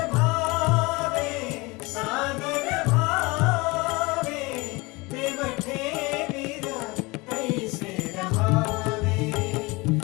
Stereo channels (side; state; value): right; quieter; 24.5 dB